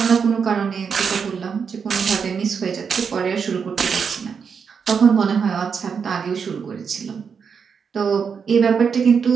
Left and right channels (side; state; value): left; quieter; 6.3 dB